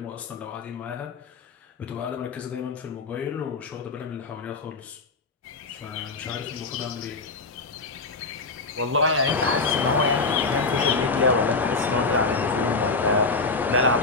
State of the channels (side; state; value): right; quieter; 3.9 dB